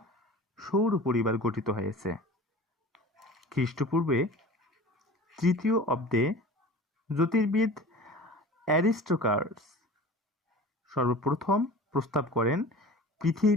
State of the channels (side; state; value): both; normal; correlation 0.39